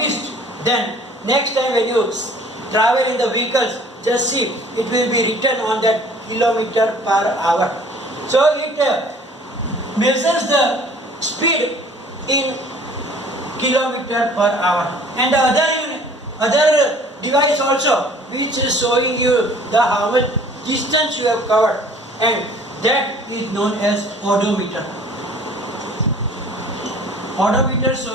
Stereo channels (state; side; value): normal; both; correlation 0.51